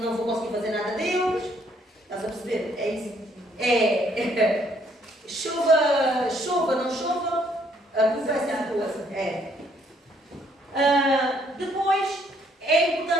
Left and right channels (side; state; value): both; normal; correlation 0.67